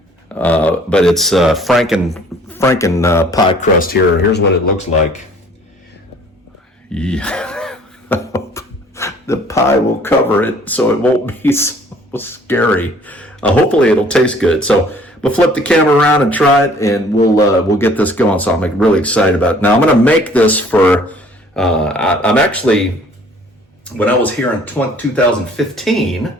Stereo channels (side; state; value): both; normal; correlation 0.55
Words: But it's Franken pie crust here. Here's what it looks like. Yeah. The pie will cover it, so it won't be so scary. Hopefully, it'll taste good. So we'll flip the camera around and try it, and we'll get this going. So I'm really excited about it. Now I'm going to make this for. I'm actually. When I was here in